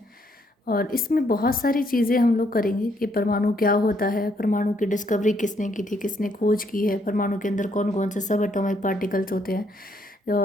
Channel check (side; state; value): both; normal; correlation 0.71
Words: और इसमें बहुत सारी चीज़ें हम लोग करेंगे कि परमाणु क्या होता है, परमाणु की डिस्कवरी किसने की थी, किसने खोज की है, परमाणु के अंदर कौन कौन से सब एटॉमिक पार्टिकल्स होते हैं